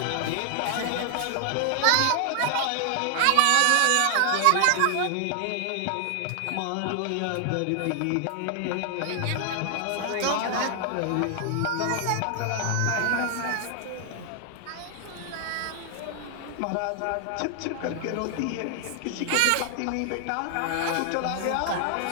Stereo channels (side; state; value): both; different; correlation 0.00